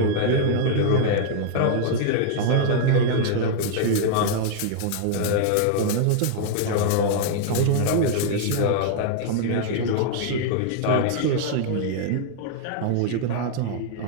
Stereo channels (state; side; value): different; both; correlation 0.00